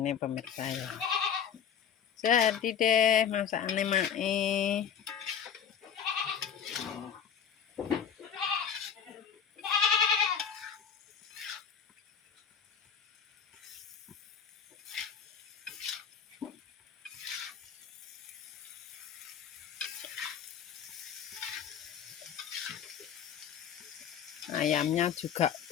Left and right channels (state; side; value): quieter; right; 8.0 dB